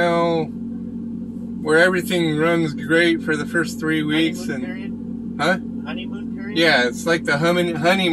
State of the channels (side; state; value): both; identical; correlation 1.00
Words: where everything runs great for the first 3 weeks. Honeymoon and period? Huh? Honeymoon period? Yeah, it's like the